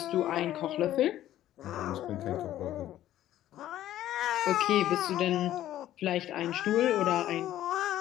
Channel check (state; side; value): quieter; right; 13.0 dB